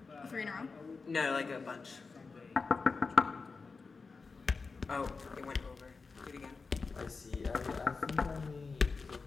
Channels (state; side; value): quieter; right; 4.5 dB